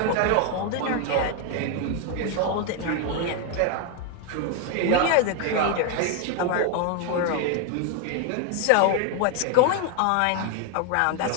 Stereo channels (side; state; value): both; different; correlation 0.01